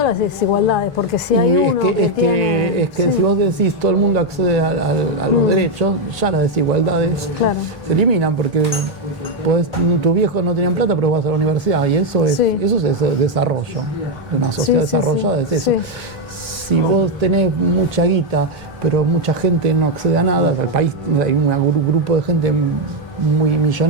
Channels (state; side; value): normal; both; correlation 0.03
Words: las desigualdades, porque si hay uno que si vos decís todo el mundo accede a los derechos, ya las desigualdades se eliminan, porque tus viejos no tienen plata, pero vas a la universidad, y eso es desarrollo. Una sociedad desarrollada es eso. Si vos tenés mucha guita, pero mucha gente no accede a nada, el país hay un grupo de gente muy